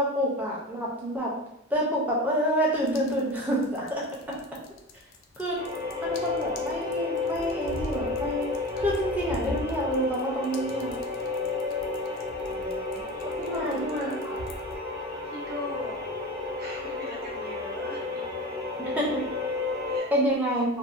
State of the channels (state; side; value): normal; both; correlation 0.29